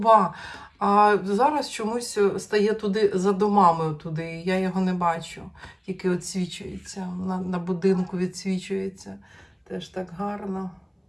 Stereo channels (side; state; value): both; identical; correlation 1.00